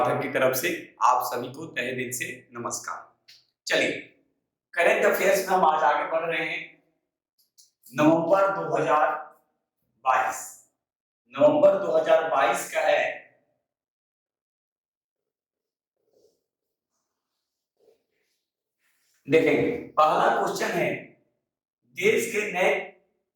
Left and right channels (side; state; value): both; identical; correlation 1.00